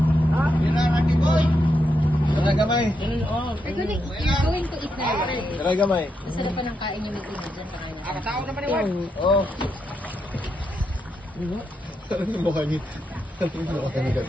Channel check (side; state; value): both; normal; correlation 0.82